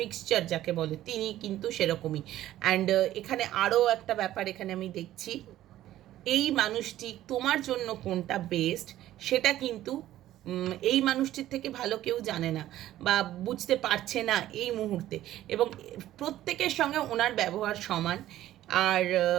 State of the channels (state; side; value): quieter; left; 13.7 dB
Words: মিক্সচার যাকে বলে, তিনি কিন্তু সেরকমই। অ্যান্ড এখানে আরও একটা ব্যাপার এখানে আমি দেখছি, এই মানুষটি তোমার জন্য কোনটা বেস্ট সেটা কিন্তু এই মানুষটির থেকে ভালো কেউ জানে না বা বুঝতে পারছে না এই মুহূর্তে, এবং প্রত্যেকের সঙ্গে ওনার ব্যবহার সমান। আর